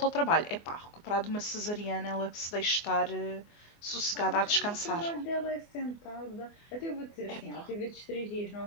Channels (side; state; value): right; late; 24 ms